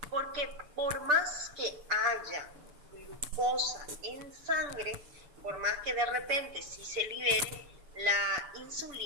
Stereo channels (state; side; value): late; left; 6.8 ms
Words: Porque por más que haya glucosa en sangre, por más que de repente sí se libere la